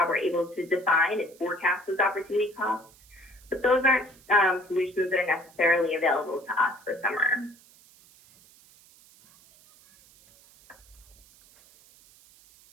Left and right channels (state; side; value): noise; right; hiss, 27 dB below the sound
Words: we're able to define and forecast those opportunity costs. But those aren't solutions that are necessarily available to us for summer.